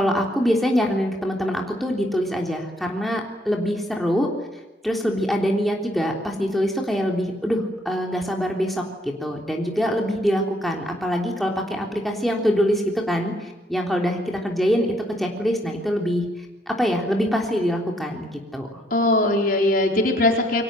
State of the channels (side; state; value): both; normal; correlation 0.69